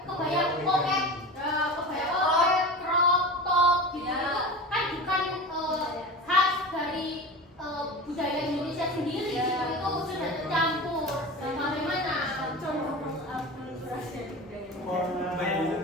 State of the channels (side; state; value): both; normal; correlation 0.30